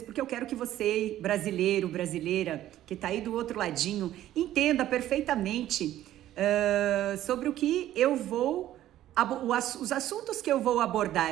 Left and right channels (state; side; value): quieter; left; 13.1 dB